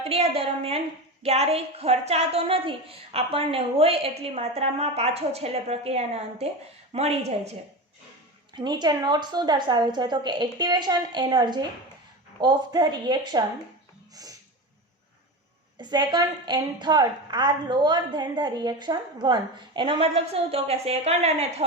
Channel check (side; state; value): both; normal; correlation 0.24